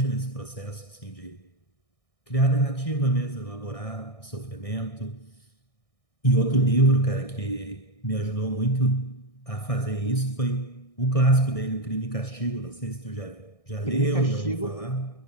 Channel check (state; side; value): late; right; 1.6 ms